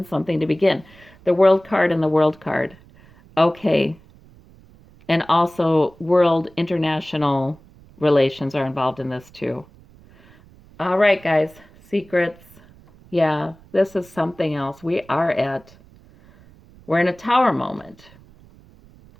something to begin. The World card and the World card. Okay. And also world international relations are involved in this too. All right, guys. Secrets. Yeah, this is something else. We're in a tower moment.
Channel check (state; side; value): noise; right; rumble, 25 dB below the sound